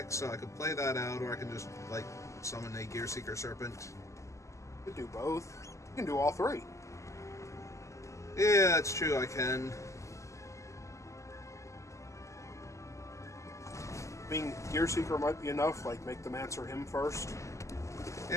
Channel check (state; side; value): late; right; 0.15 ms